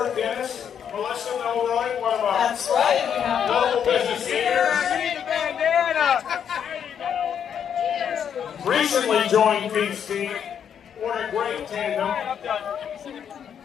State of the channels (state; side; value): quieter; right; 8.3 dB